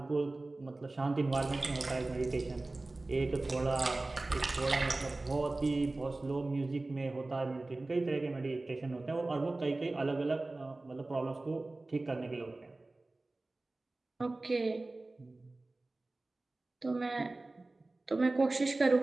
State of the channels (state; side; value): quieter; left; 3.0 dB